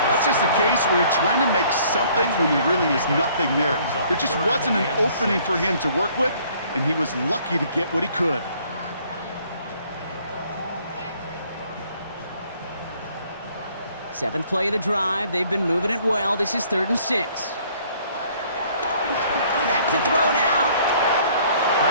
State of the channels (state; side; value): inverted; both; correlation -0.60